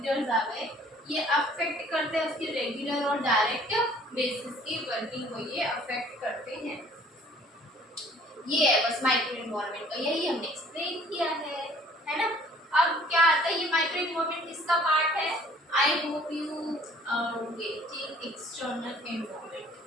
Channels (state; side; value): normal; both; correlation 0.55